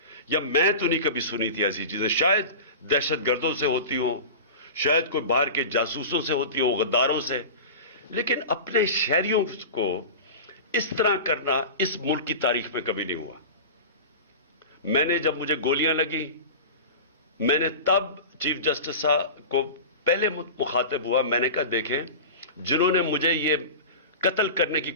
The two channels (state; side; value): inverted; both; correlation -0.30